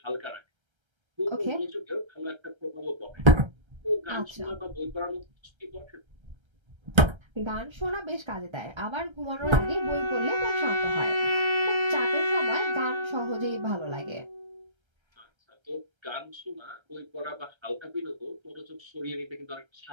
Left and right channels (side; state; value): left; late; 1.3 ms